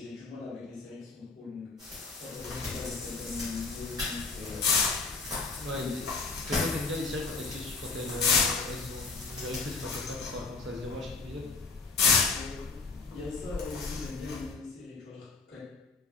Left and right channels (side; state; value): right; quieter; 4.1 dB